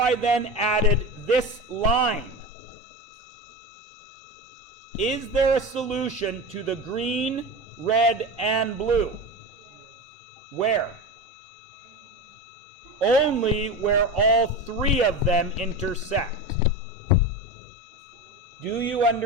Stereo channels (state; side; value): normal; both; correlation 0.25